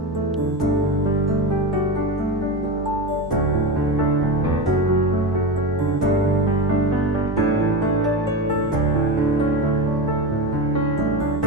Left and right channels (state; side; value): normal; both; correlation 0.20